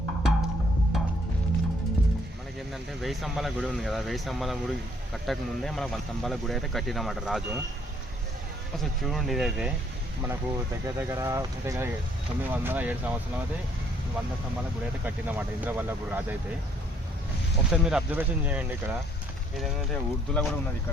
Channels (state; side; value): normal; both; correlation 0.65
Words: ఏంటంటే 1000 స్తంభాల గుడి ఉంది కదా, 1000 స్తంభాల గుడి కట్టక ముందే మనకు 100 స్తంభాల గుడి అయితే కట్టినమాట రాజు. అసలు చూడండి, ఇదైతే మనకు దగ్గర 907 సంవత్సరాలు అయితే 100 స్తంభాల గుడి అయితే కట్టినమాట ఇంద్రవల్లభుడు రాజు అయితే. ఒకసారి మీరు అబ్జర్వేషన్ చేయండి. ఇక్కడ ఇదేంటంటే ఉర్దూలో కూడా ఉన్నది.